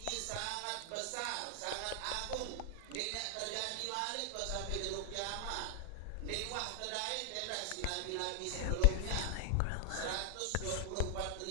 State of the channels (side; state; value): both; different; correlation 0.00